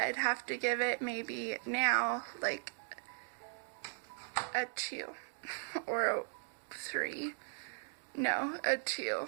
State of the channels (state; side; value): silent; left; digital silence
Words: have to give it maybe now like a 2 or a 3. No, a